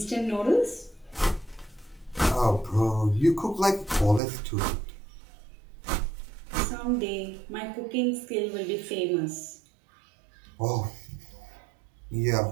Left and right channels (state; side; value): drops out; left; at 4.2 s